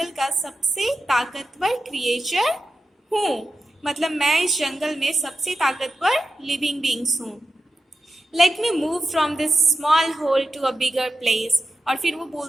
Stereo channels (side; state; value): both; normal; correlation 0.90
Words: का सबसे ताकतवर क्रिएचर हूँ, मतलब मैं इस जंगल में सबसे ताकतवर लिविंग बींग्स हूँ। Let me move from this small hole to a bigger place. और फिर वो